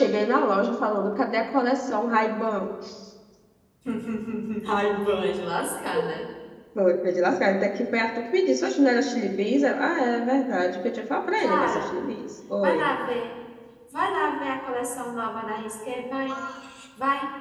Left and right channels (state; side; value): identical; both; correlation 1.00